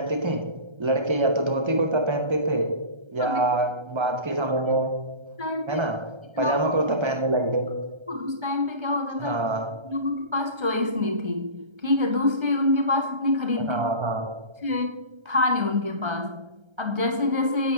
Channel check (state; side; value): late; left; 1.3 ms